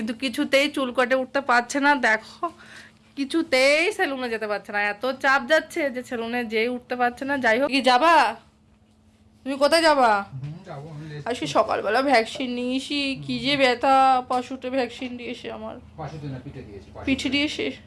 কিছুতেই চুল কাটে উঠতে পারছে না। দেখো কিছুতেই সেলুনে যেতে পারছে না, এত চাপ যাচ্ছে যে সেলুনে যেই উঠতে পারছে না। যাই হোক, কি যাবা তুমি? কোথায় যাবা? আজকে সকালবেলা ভ্যাকসিন নিয়েছি, কি যে ব্যথা, পাশুতে ভ্যাকসিন দিয়েছে আমার। পিঠে দিয়েছে?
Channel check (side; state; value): both; identical; correlation 1.00